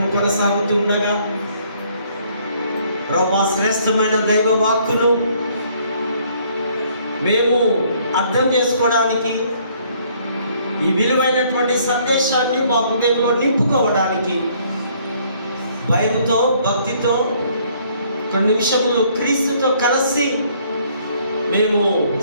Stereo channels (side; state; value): both; inverted; correlation -0.63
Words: కొనసాగుతూ ఉండగా ప్రభువా, శ్రేష్టమైన దైవ వాక్కును మేము అర్థం చేసుకోవడానికి, ఈ విలువైనటువంటి సందేశాన్ని మా హృదయంలో నింపుకోవడానికి భయంతో, భక్తితో కొన్ని నిమిషములు క్రీస్తుతో కలిసి మేము